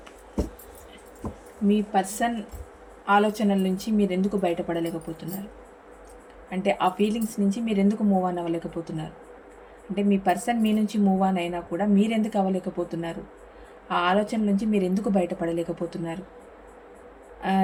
మీ పర్సన్ ఆలోచనల నుంచి మీరు ఎందుకు బయటపడలేకపోతున్నారు, అంటే ఆ ఫీలింగ్స్ నుంచి మీరు ఎందుకు మూవ్ ఆన్ అవ్వలేకపోతున్నారు, అంటే మీ పర్సన్ మీ నుంచి మూవ్ ఆన్ అయినా కూడా మీరు ఎందుకు అవ్వలేకపోతున్నారు, ఆ ఆలోచన నుంచి మీరు ఎందుకు బయటపడలేకపోతున్నారు,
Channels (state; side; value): identical; both; correlation 1.00